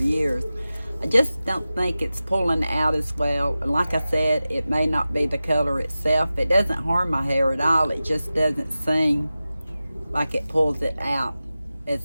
I just don't think it's pulling out as well. And like I said, it may not be the color itself. It doesn't harm my hair at all. It just doesn't seem like it pulls it out as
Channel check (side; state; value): both; inverted; correlation -0.95